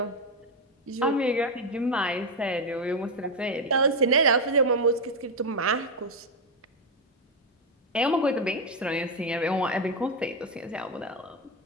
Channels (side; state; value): both; normal; correlation 0.07